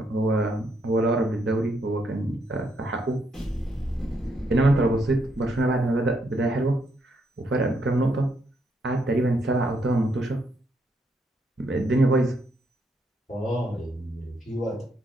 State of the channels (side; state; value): both; normal; correlation 0.76